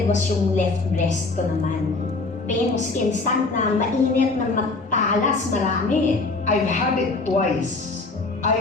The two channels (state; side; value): quieter; right; 3.6 dB